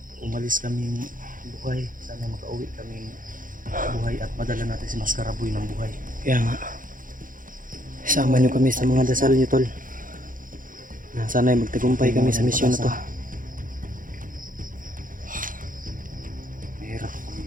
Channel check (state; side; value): late; left; 0.39 ms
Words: Umalis kaming buhay. Sana makauwi kaming buhay at madala natin si Maskaraboy ng buhay. Kaya nga. Sama niyo kami sa mga dasal niyo, tol. Sana ay magtagumpay kami sa misyon na to. Mahirap kami